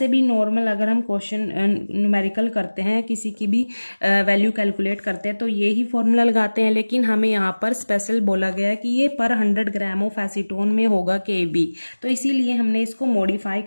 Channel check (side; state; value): both; inverted; correlation -1.00